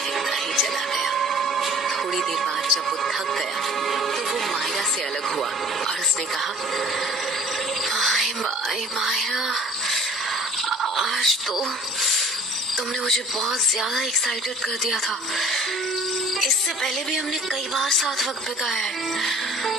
ही चला गया। थोड़ी देर बाद जब वो थक गया तो वो मायरा से अलग हुआ और उसने कहा, मायरा, आज तो तुमने मुझे बहुत ज्यादा एक्साइटेड कर दिया था। इससे पहले भी हमने कई बार साथ वक्त बिताया है,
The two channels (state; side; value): normal; both; correlation 0.51